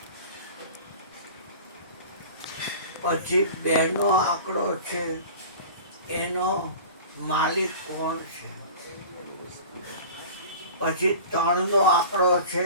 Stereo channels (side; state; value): both; inverted; correlation -0.39